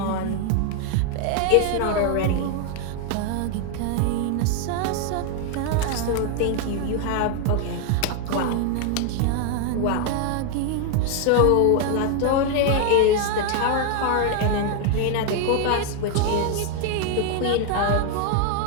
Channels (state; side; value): different; both; correlation 0.01